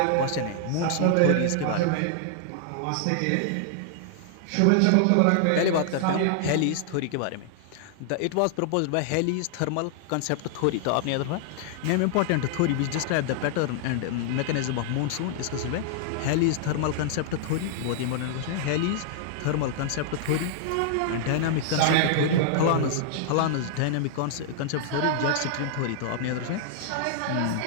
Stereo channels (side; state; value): both; different; correlation -0.01